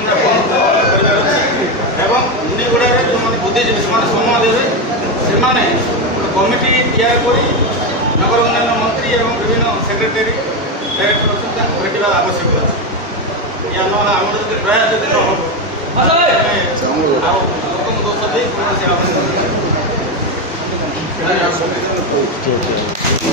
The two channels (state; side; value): normal; both; correlation 0.11